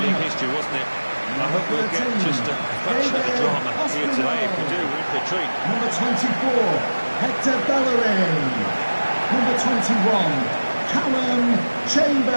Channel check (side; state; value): both; inverted; correlation -1.00